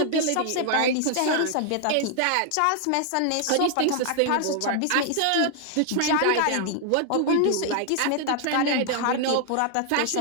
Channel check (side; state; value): both; different; correlation 0.00